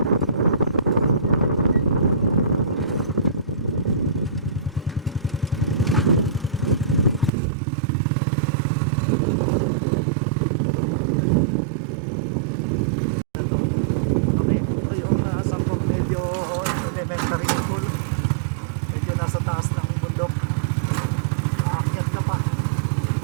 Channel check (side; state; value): left; drops out; at 7.3 s